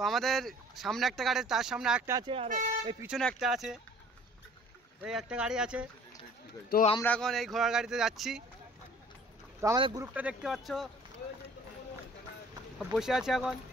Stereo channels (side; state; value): both; normal; correlation 0.52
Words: আমাদের সামনে একটা গাড়ি, তার সামনে একটা আছে, আর এই পিছনে একটা আছে, এই একটা গাড়ি আছে। তো আমরা এখন এই ঘোড়ার গাড়িতে যাচ্ছি। তো আমাদের গ্রুপটা দেখতে পাচ্ছ বসে আছে এখন।